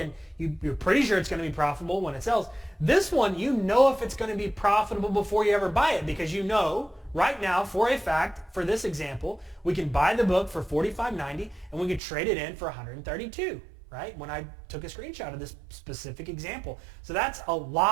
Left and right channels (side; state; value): left; drops out; at 12.0 s